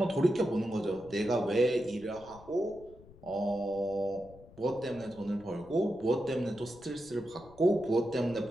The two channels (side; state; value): left; noise; rumble, 22 dB below the sound